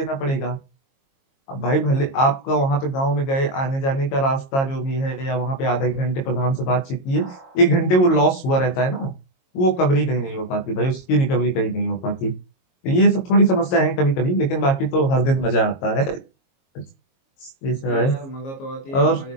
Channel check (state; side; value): late; right; 22 ms